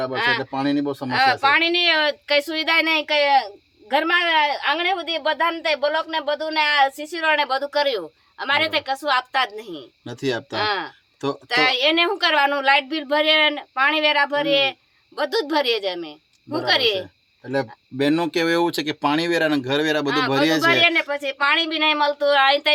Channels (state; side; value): identical; both; correlation 1.00